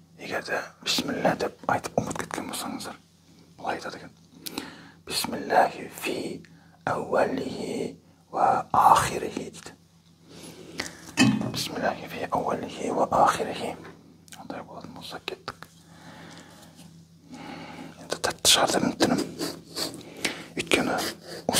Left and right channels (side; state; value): both; identical; correlation 1.00